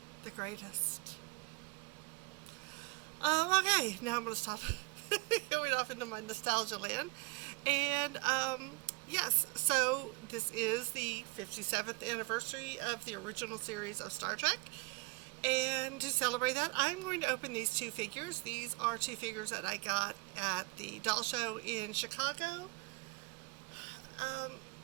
the greatest. Okay, now I'm going to stop going off into my nostalgia land. And yes, so this is the 57th anniversary of the original series of Star Trek. And to celebrate that, I'm going to open these two figures. These are two figures that I got at the doll show in Chicago.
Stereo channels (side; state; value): left; quieter; 27.6 dB